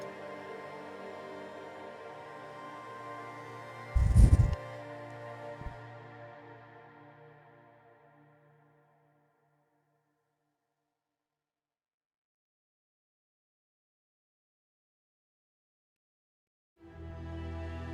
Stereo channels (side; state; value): both; identical; correlation 1.00